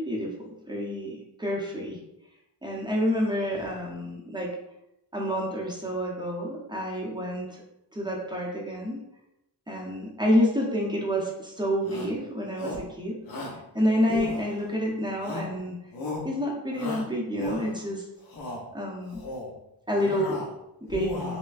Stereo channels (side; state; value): both; normal; correlation 0.58